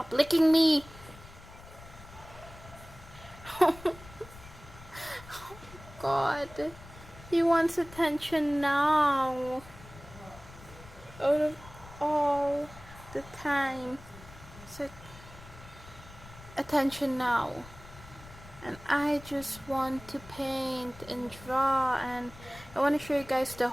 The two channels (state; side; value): noise; left; rumble, 18 dB below the sound